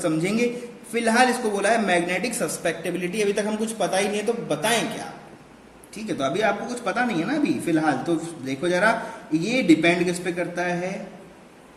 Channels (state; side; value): identical; both; correlation 1.00